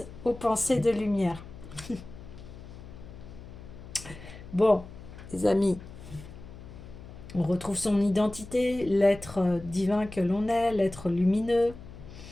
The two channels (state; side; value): noise; left; hum, 15 dB below the sound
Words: aux pensées de lumière. Bon, les amis, on retrouve son identité, l'être divin que l'on est, l'être lumineux.